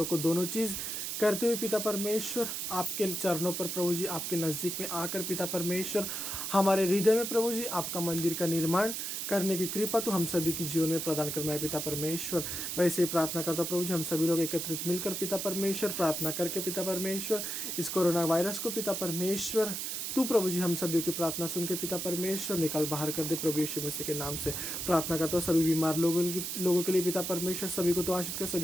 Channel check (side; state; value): right; noise; hiss, 3 dB below the sound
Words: को दोनों चीज़ करते हुए पिता परमेश्वर आपके चरणों पर प्रभु जी आपके नज़दीक में आकर पिता परमेश्वर हमारे हृदय में प्रभु जी आपका मंदिर का निर्माण करने की कृपा तो हम सभी के जीवन में प्रदान करना है पिता परमेश्वर। वैसे ही प्रार्थना करता प्रभु जी हम सभी लोग एकत्रित मिलकर पिता परमेश्वर प्रार्थना करके पिता परमेश्वर इस कोरोना वायरस को पिता परमेश्वर तू प्रभु जी हम सभी की प्रार्थना सुन के पिता परमेश्वर निकाल बाहर कर दे प्रभु यीशु मसीह के नाम से प्रार्थना करता हूँ। सभी बीमार लोगों के लिए पिता परमेश्वर सभी को तो आशीष कर,